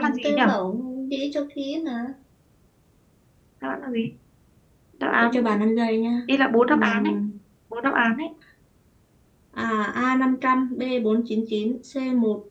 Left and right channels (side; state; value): both; identical; correlation 1.00